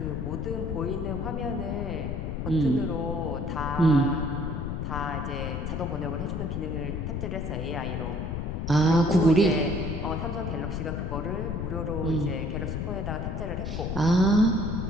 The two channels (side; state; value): left; noise; rumble, 3 dB below the sound